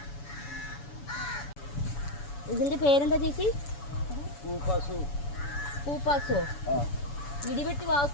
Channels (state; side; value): late; right; 7.0 ms